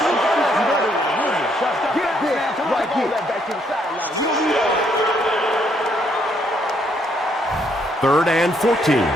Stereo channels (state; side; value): normal; both; correlation 0.71